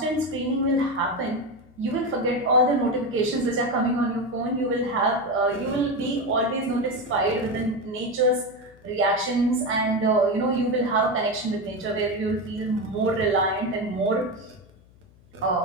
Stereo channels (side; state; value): left; noise; hum, 27 dB below the sound